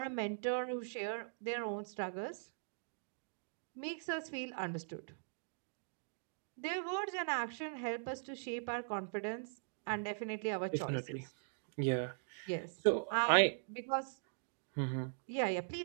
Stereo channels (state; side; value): silent; left; digital silence